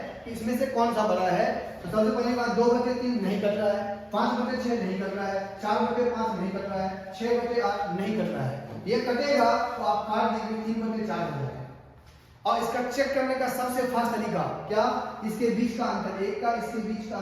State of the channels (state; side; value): identical; both; correlation 1.00